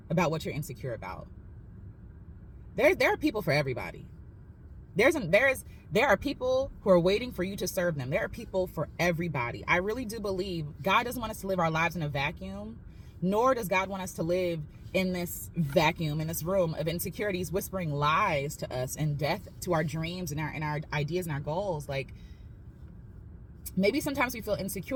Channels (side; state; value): both; identical; correlation 1.00